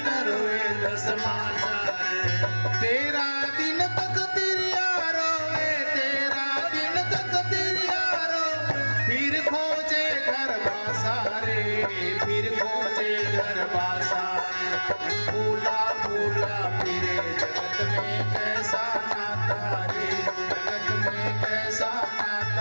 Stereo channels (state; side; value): inverted; both; correlation -1.00